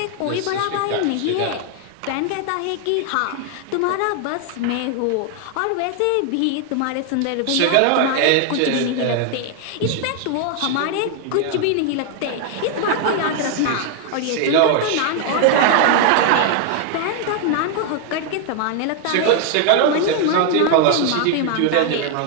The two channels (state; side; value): different; both; correlation 0.00